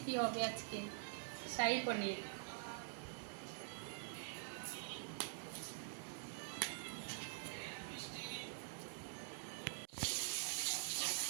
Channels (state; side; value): silent; left; digital silence